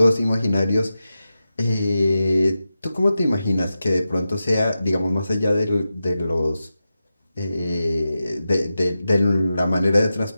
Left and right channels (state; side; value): inverted; both; correlation -0.92